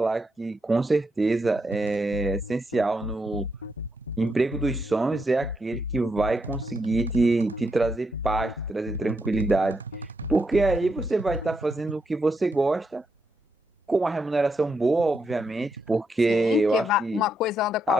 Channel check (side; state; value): both; normal; correlation 0.81